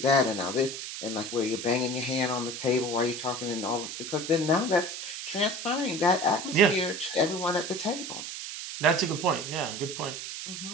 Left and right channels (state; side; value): noise; right; hiss, 7 dB below the sound